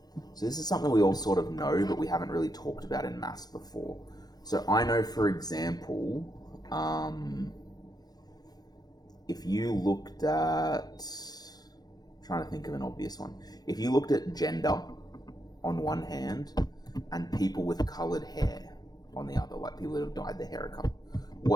So this is something we all sort of know, but we haven't really talked about in maths before. So I know, for example, if you looked at, trying to think of an obvious one. If you looked at gender on one hand and people with coloured hair on the other, like people that have dyed their hair a colour,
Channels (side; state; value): right; late; 0.19 ms